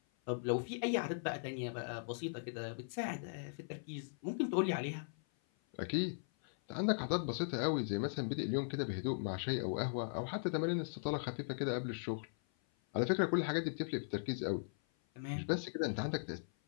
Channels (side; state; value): right; silent; 52 dB below the other